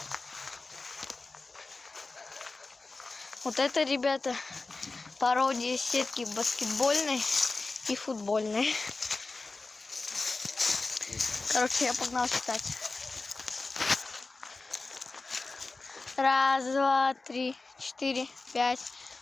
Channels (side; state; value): right; quieter; 3.6 dB